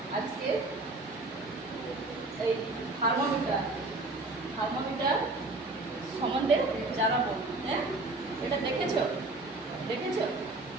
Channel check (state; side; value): quieter; left; 3.1 dB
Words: আজকে এই থার্মোমিটার সম্বন্ধে জানাবো। হ্যাঁ, এটা দেখেছো